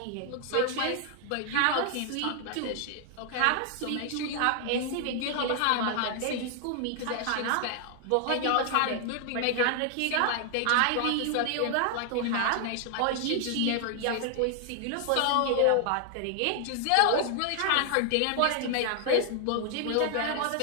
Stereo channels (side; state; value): both; different; correlation 0.00